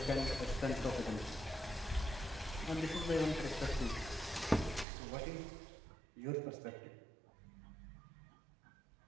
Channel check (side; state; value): left; drops out; at 4.9 s